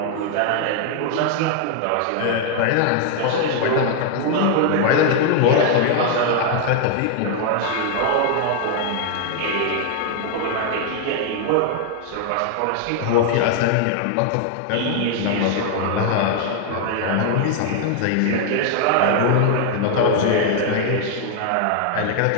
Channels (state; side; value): different; both; correlation 0.00